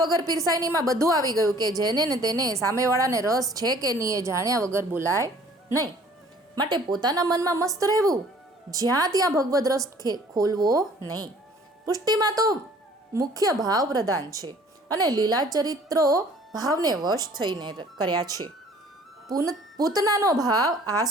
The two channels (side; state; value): both; normal; correlation 0.53